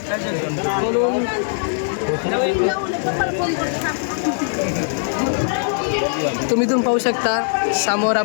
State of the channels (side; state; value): right; silent; digital silence